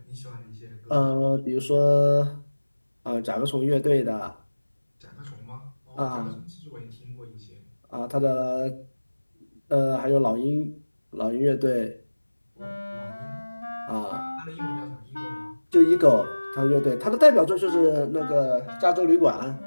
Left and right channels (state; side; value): inverted; both; correlation -1.00